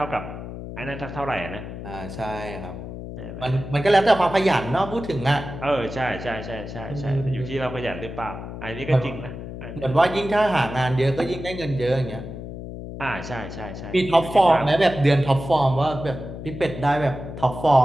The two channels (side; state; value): left; noise; hum, 10 dB below the sound